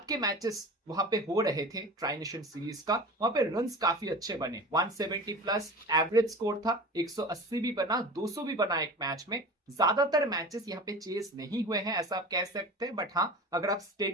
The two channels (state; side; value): normal; both; correlation 0.35